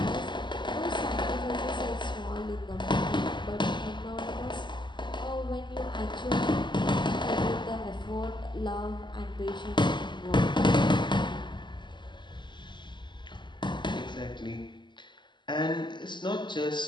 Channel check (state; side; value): late; right; 0.22 ms